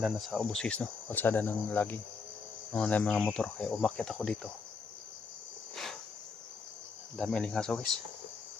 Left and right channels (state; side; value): quieter; right; 5.0 dB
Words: na sa Obusis, no? Kalsada ng laging na mga motor, kaya umakyat ako dito. Dami alingaso guys.